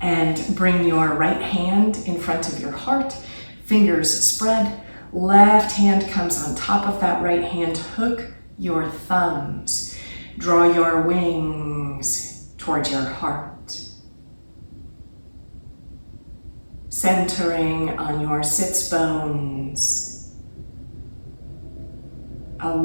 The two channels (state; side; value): inverted; both; correlation -1.00